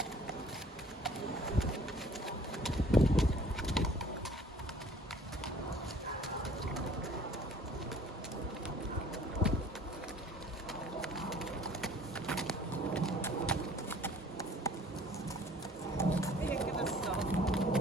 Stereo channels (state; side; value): normal; both; correlation 0.53